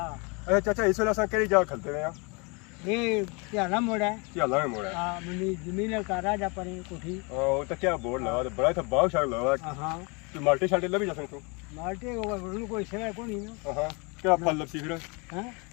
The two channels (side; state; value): right; quieter; 30.6 dB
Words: अरे चाचा इस वेले असां केड़ी जगह खलते हैं ये प्याला मोड़ा है क्या लाए मोड़ा हां मनी जमीन का राजा पर कोठी ओ तो क्या बोर्ड लगा तो बड़ा था बाग शाग लगा हां तू माल्टे शाल्टे लभी जा सकते माल्टे को कोई सेवा को नहीं ना हां क्या फल लपसी फिर हैं